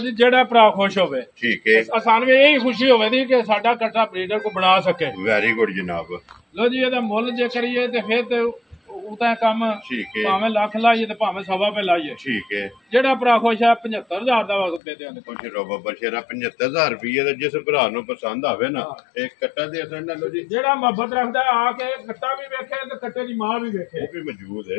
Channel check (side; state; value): right; drops out; at 14.8 s